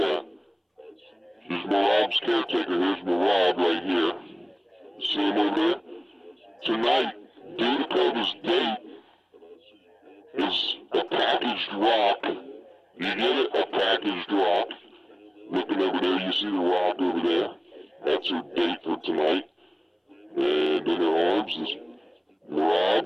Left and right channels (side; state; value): both; identical; correlation 1.00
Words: She's Merab's caretaker. Here's Merab right here. See him over there? Tonight, Dudakova's date is a packaged rock. You get it? A packaged rock. Looking over there, you see the rock over there. That's her date for tonight. And in her arms is Merab.